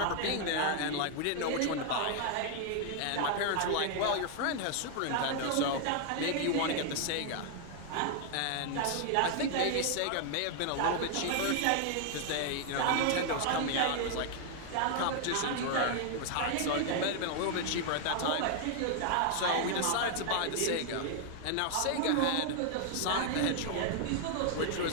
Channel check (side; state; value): both; different; correlation 0.00